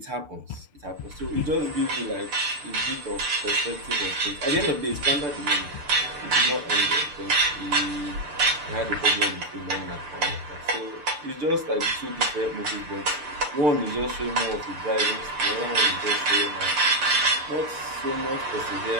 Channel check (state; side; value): late; left; 6.8 ms